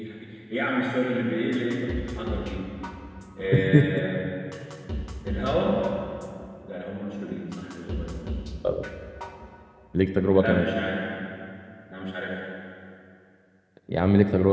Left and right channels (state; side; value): identical; both; correlation 1.00